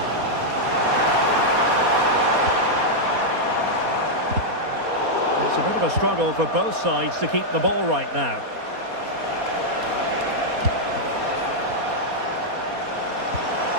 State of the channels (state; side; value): late; left; 4.2 ms